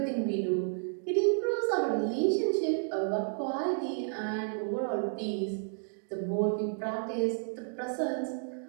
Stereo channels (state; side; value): silent; left; digital silence